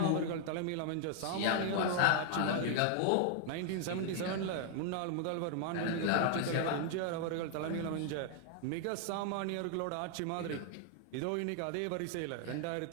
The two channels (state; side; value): different; both; correlation 0.00